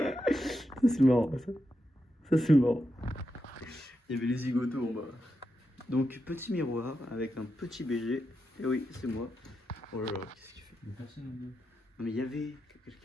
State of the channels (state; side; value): normal; both; correlation 0.86